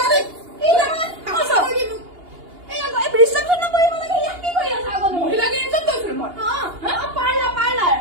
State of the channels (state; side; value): late; left; 2.8 ms